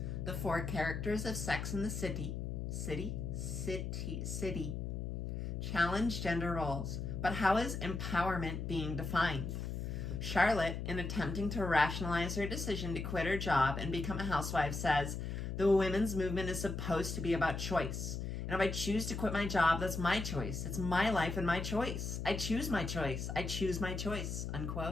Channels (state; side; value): noise; left; hum, 4 dB below the sound